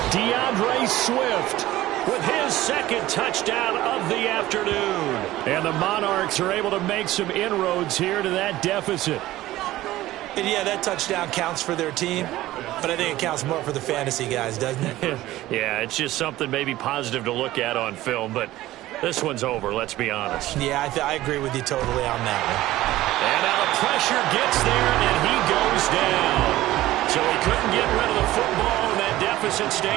DeAndre Swift with his 2nd touchdown of the afternoon. And the Monarchs are able to make some inroads here to that deficit. And yeah, that touchdown counts for their team, but I think it counts more for the fantasy guys, doesn't it? Yeah, it's just something maybe positive to look at on film, but This one's over, let's be honest. Yeah, I agree with you totally on that one. And now the pressure gets there, and he goes down. So he couldn't get rid of the football, and that deficit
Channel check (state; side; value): quieter; left; 16.0 dB